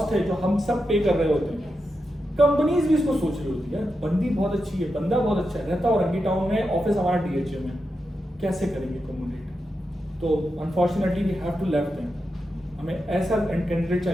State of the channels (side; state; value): both; normal; correlation 0.88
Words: है जो हम सब पे कर रहे होते हैं। कंपनीज भी इसको सोच रही होती है, बंदी बहुत अच्छी है, बंदा बहुत अच्छा है, रहता और रंगी टाउन में, ऑफिस हमारा DHA में, कैसे करेंगे कम्युनिकेट? तो unfortunately we have to left them, हमें ऐसा कैंडिडेट